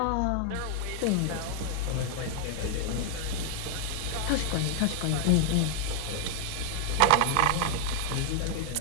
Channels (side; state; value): both; different; correlation -0.01